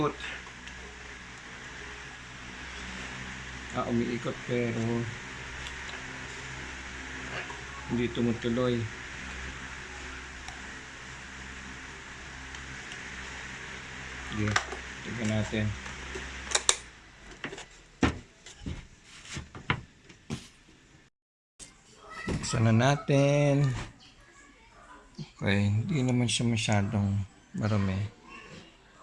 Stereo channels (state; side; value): identical; both; correlation 1.00